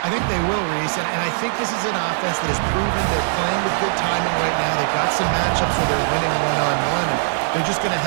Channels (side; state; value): left; silent; digital silence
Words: I think they will, Reese, and I think this is an offense that has proven they're playing with good timing right now. They've got some matchups where they're winning one-on-one. They're just going to